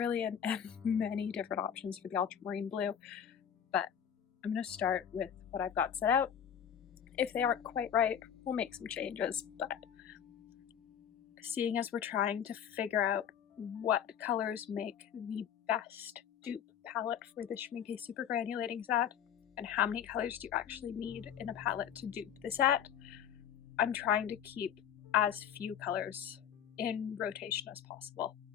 and many different options for the ultramarine blue, but I'm going to start with what I've got set out. If they aren't quite right, we'll make some changes, but seeing as we're trying to figure out what colors make the best dupe palette for the Schmincke super granulating set, and how many colors do you actually need in a palette to dupe the set, I'm trying to keep as few colors in rotation as possible.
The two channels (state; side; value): quieter; right; 8.8 dB